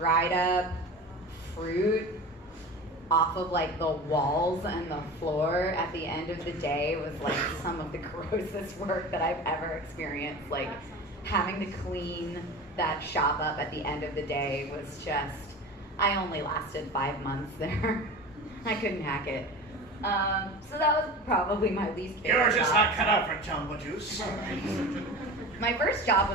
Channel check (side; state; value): both; normal; correlation 0.33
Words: up fruit off of like the walls and the floor at the end of the day was like some of the grossest work that I've ever experienced. Like having to clean that shop up at the end of the day was just, I only lasted 5 months there. I couldn't hack it. So that was probably my least favorite You're just job. not cut out for Jamba Juice. My first job